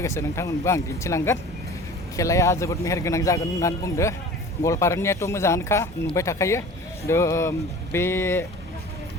नोंथांमोनबो आं दिन्थिलांगोन खेलाया जोबोद मेहेरगोनां जागोन होननानै बुंदो गवालपारानियाथ' मोजाङानोखा नुबाय थाखायो बे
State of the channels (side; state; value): both; normal; correlation 0.41